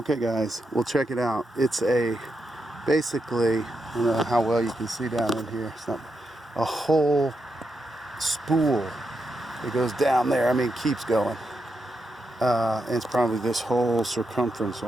guys, we'll check it out. It's basically, I don't know how well you can see down in here. It's not a whole spool that goes down there. I mean, it keeps going. And it's probably this whole circumference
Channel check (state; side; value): normal; both; correlation 0.84